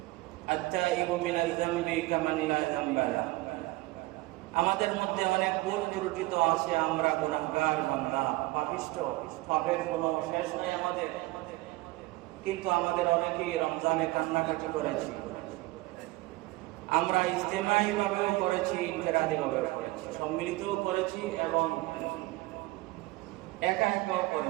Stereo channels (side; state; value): left; quieter; 20.5 dB